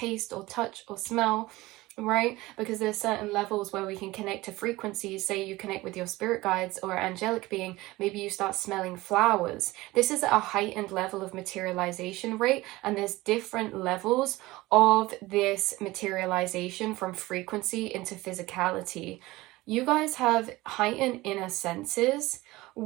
or touch or smell, right? Because there's certain levels where we can connect to frequencies. Say you connect with your spirit guides or angelic being, maybe you start smelling flowers. This is a heightened level of materialization rate, and there's different levels of this materialization from frequency into physicality. You guys have heightened inner senses,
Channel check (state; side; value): quieter; left; 19.5 dB